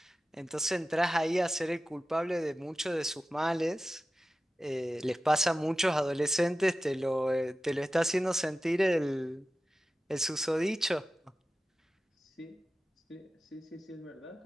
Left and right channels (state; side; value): normal; both; correlation 0.94